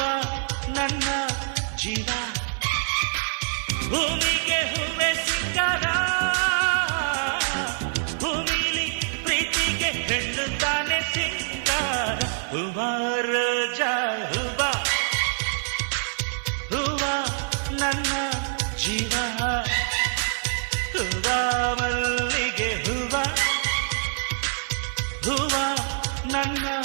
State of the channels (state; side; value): silent; left; digital silence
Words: ನನ್ನ ಜೀವ ಭೂಮಿಗೆ ಹೂವೆ ಸಿಕ್ಕಾರ ಭೂಮಿಲಿ ಪ್ರೀತಿಗೆ ಹೆಣ್ಣು ತಾನೆ ಸಿಂಗಾರ ಹೂವ ರೋಜಾ ಹೂವ ಹೂವ ನನ್ನ ಜೀವ ಹೂವ ಮಲ್ಲಿಗೆ ಹೂವ ಹೂವ ನನ್ನ